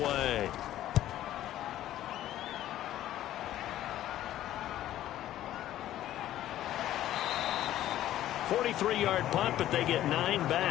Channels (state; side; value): quieter; right; 13.2 dB